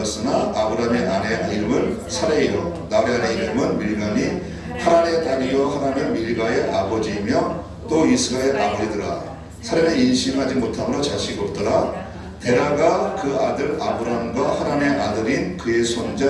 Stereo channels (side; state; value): both; identical; correlation 1.00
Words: 아브람의 아내 이름은 사레이요 나홀의 아내 이름은 밀가니 하란의 딸이요 하란은 밀가의 아버지이며 또 이스가의 아버지더라. 사레는 인심하지 못함으로 자식이 없더라. 데라가 그 아들 아브람과 하란의 아들인 그의 손자